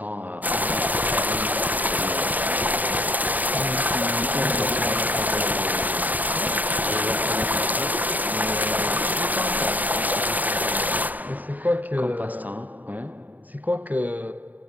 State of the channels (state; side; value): late; left; 0.081 ms